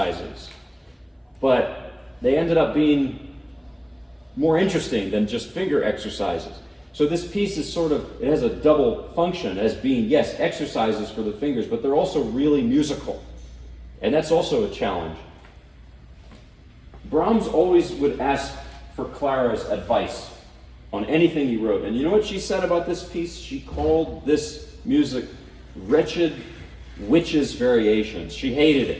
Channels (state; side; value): identical; both; correlation 1.00